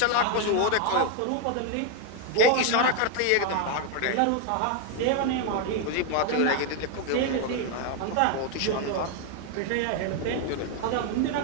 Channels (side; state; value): both; different; correlation 0.01